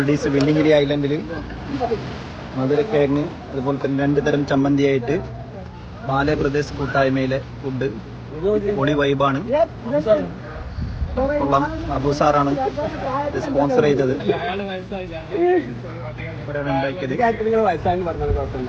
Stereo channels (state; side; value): identical; both; correlation 1.00